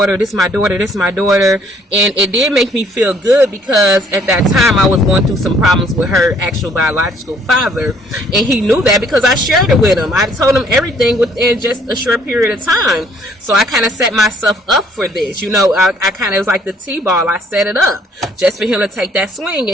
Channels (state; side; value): normal; both; correlation 0.63